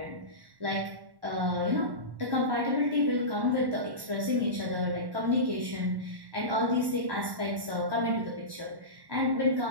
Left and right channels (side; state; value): left; late; 1.1 ms